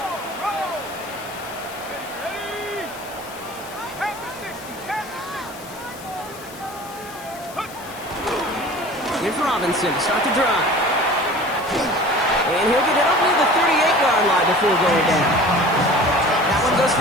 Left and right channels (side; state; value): left; noise; hiss, 17 dB below the sound